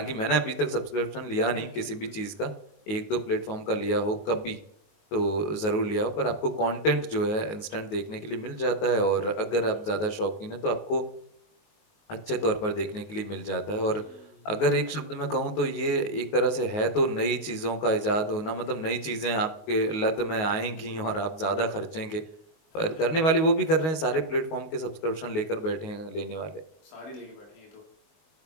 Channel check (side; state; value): right; late; 19 ms